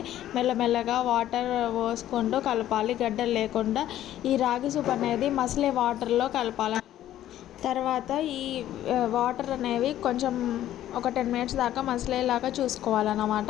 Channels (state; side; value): quieter; right; 12.6 dB